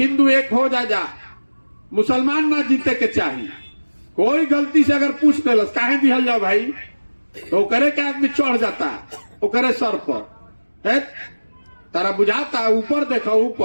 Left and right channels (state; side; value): inverted; both; correlation -1.00